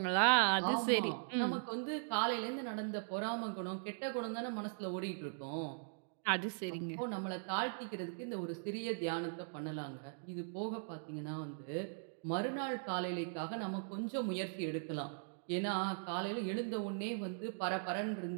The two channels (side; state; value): left; silent; digital silence